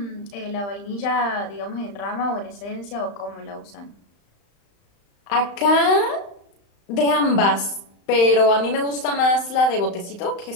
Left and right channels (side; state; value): right; late; 35 ms